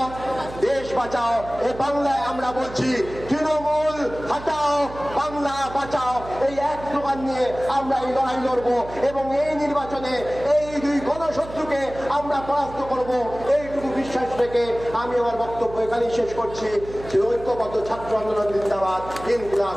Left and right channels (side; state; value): right; noise; hum, 14 dB below the sound